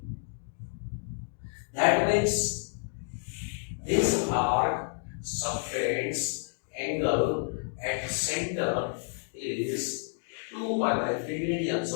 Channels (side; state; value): right; silent; digital silence